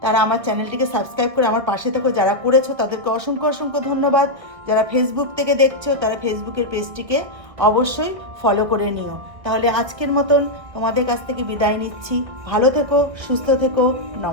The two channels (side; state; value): left; late; 1.5 ms